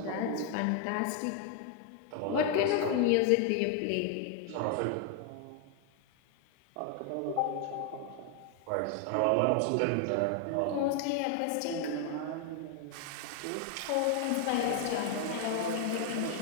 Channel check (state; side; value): different; both; correlation 0.00